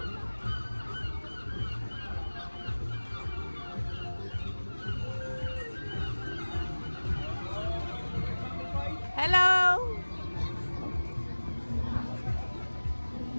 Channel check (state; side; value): inverted; both; correlation -1.00